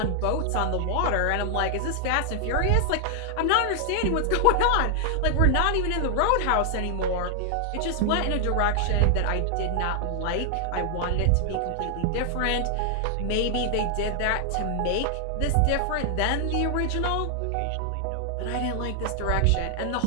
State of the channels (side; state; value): both; different; correlation 0.00